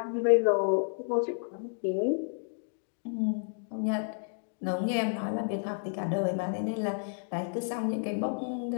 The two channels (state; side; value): silent; right; digital silence